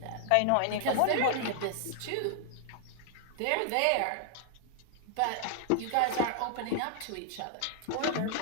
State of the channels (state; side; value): different; both; correlation 0.00